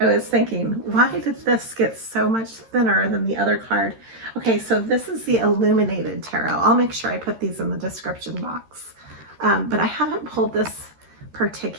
I was thinking, why did this get so much thinner than the other card? Okay, so this is the Illuminated Tarot. I'll make sure I put these in the description box. But I haven't pulled this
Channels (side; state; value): left; late; 13 ms